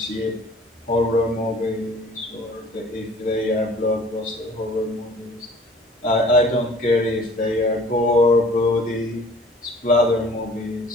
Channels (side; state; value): both; normal; correlation 0.50